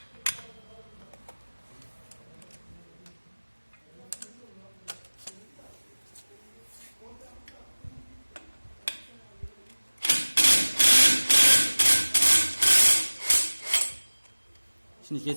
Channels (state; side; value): inverted; both; correlation -1.00